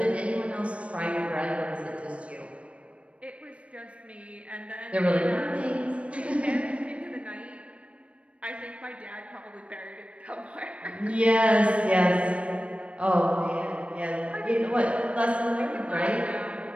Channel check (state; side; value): late; left; 0.062 ms